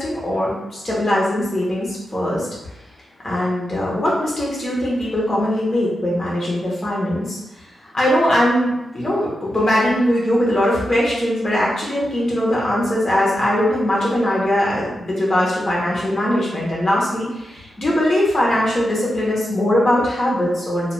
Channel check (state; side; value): normal; both; correlation 0.88